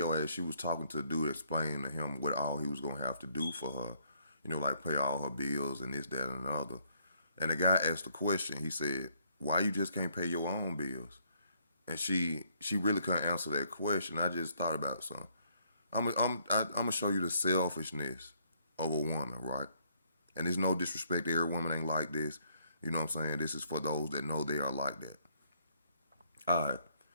as she was talking to the dude, explaining to him what all he was gonna have to do for her, like pay all her bills and this, that, and the other. And the guy asked the question. He said, "Why you just can't pay your own bills?" And she really couldn't answer that question. I just thought about something. I'm gonna show you the selfishness of a woman, right? And there's no disrespect. Every woman ain't like this. You know what I'm saying? This is for those that know they are like that. All right.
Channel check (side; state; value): both; inverted; correlation -0.69